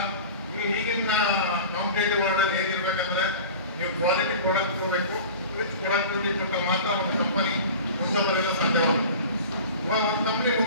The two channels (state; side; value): inverted; both; correlation -0.38